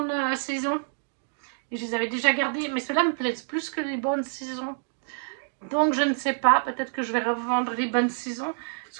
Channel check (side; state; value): left; silent; digital silence